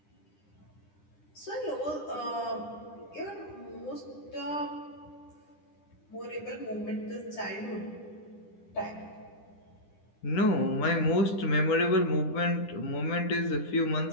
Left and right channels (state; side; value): late; right; 9.9 ms